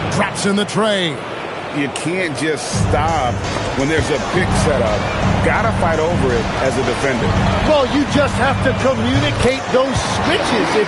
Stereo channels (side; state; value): both; identical; correlation 1.00